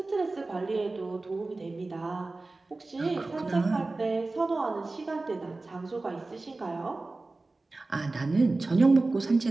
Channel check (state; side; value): quieter; left; 3.3 dB